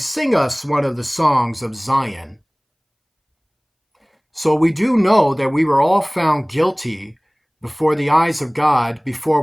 us one of the songs of Zion. So we do know that we were all found guilty before the eyes of God before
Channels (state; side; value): identical; both; correlation 1.00